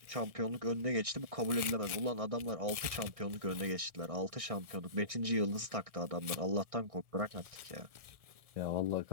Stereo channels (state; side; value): late; left; 1.6 ms